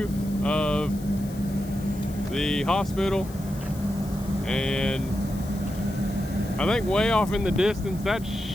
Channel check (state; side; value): noise; left; hiss, 20 dB below the sound